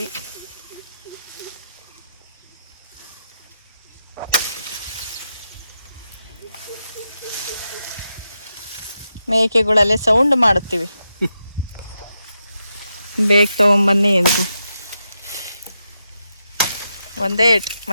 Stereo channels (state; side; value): inverted; both; correlation -0.86